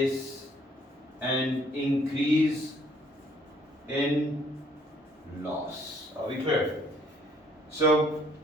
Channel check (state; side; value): normal; both; correlation 0.63